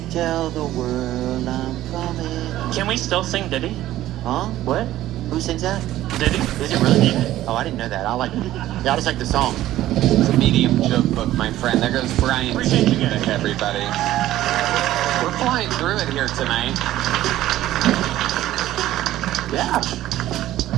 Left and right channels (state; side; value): quieter; left; 14.2 dB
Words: Tell the world I'm coming. Can we still sing Diddy? Huh? What? Who sings that? Diddy? Is it really? Oh, I didn't know that. I just like the song. It's a medium joke book, my friend. There goes Brian. Appreciate you guys. Everybody. We're flying through it here tonight. Yeah.